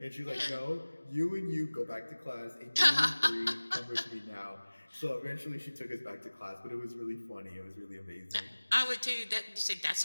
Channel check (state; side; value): inverted; both; correlation -1.00